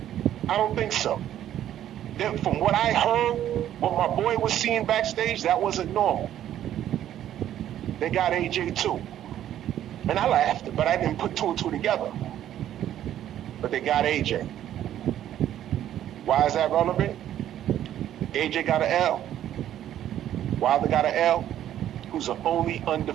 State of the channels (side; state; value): left; quieter; 11.5 dB